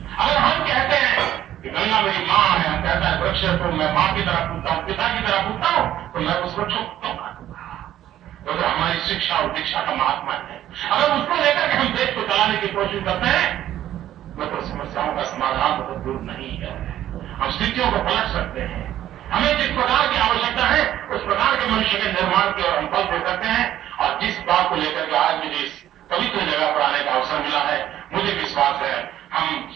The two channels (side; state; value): left; quieter; 12.3 dB